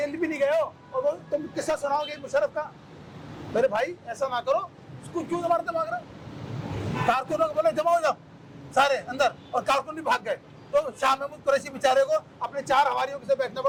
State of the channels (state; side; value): identical; both; correlation 1.00